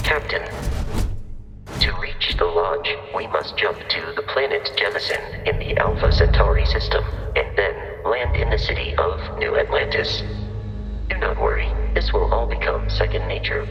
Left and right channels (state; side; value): identical; both; correlation 1.00